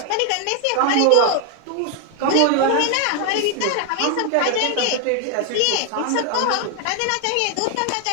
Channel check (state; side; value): different; both; correlation 0.00